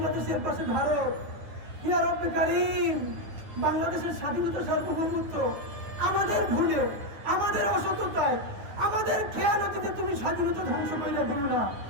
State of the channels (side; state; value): left; late; 9.7 ms